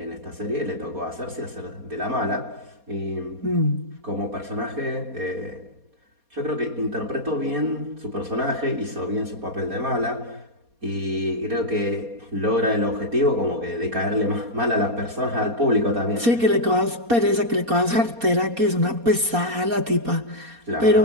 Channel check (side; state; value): left; late; 4.2 ms